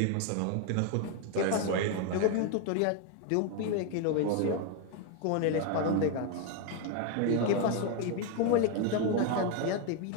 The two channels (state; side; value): different; both; correlation 0.01